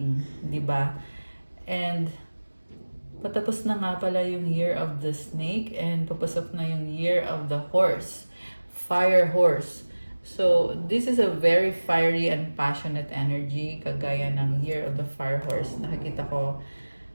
di ba? And patapos na nga pala yung year of the snake and papasok na yung year of the horse. Fire horse. So, this is a very fiery and passionate energy, kagaya ng year of the fire horse. Nakikita ko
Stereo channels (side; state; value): both; inverted; correlation -1.00